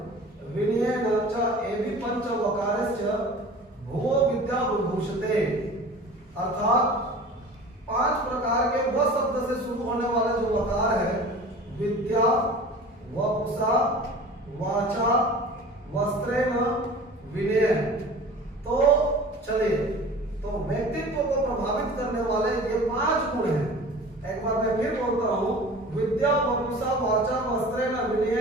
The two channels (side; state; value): both; normal; correlation 0.40